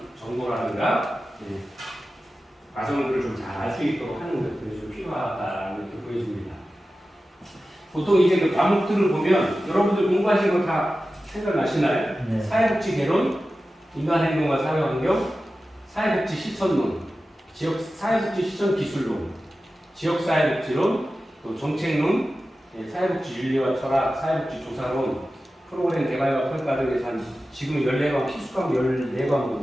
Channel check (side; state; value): both; normal; correlation 0.94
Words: 정보라든가 과정들을 좀 잘 알 수 있도록 하는 것들이 좀 필요하다는 게 보여집니다. 보통 이제 그 과목들을 보면 여러분들 공부하신 거 다 생각나시나요? 네. 사회복지 개론, 인간행동과 사회환경, 사회복지 실천론, 사회복지 실천 기술론, 지역사회복지론, 또 정책론, 사회복지 윤리와 철학, 사회복지 조사론, 프로그램 개발과 평가 등에서 한 지금 14과목, 필수과목